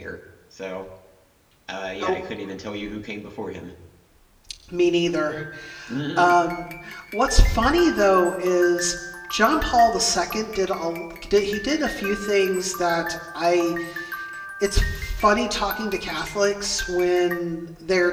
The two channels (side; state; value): both; identical; correlation 1.00